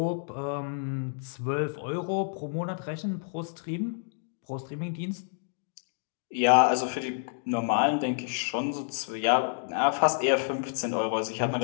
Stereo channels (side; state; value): right; silent; digital silence